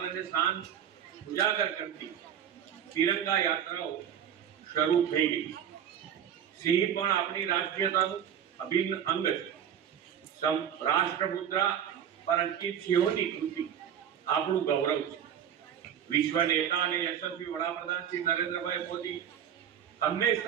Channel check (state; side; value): quieter; left; 9.1 dB